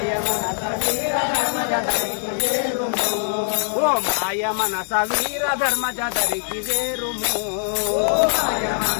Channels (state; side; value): silent; right; 64 dB below the other